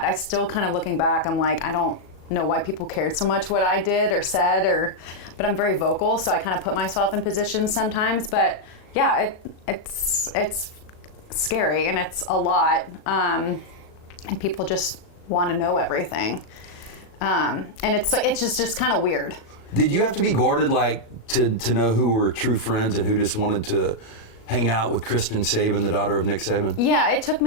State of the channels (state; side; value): late; right; 37 ms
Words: I still kind of looking back, I'm like, I don't know why people cared so much what I did or said, but I'm very vocal, so I kind of put myself in positions sometimes. But yeah, it's scary and it's a lot, and people just want to know everything, and it's just kind of weird. Did you have to be guarded, like, to know who were true friends and who just wanted to hang out with Kristen Saban, the daughter of Nick Saban? Yeah, it took